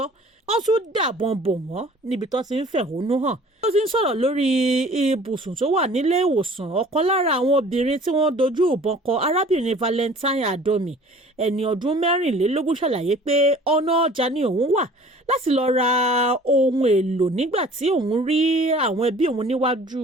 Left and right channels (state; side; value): normal; both; correlation 0.49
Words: Wọ́n tún dàbọn bò wọ́n níbi tó ti ń fẹ̀hónú hàn. Ó ti ń sọ̀rọ̀ lórí ibùsùn tó wà nílé ìwòsàn. Ọ̀kan lára àwọn obìnrin tí wọ́n dojú ìbọn kọ, arábìnrin Valentine Adomi, ẹni ọdún 24, ṣàlàyé pé ọ̀nà ọjà ni òun wà láti lọ ra ohun èlò nígbà tí òun rí àwọn ẹbí òun níwájú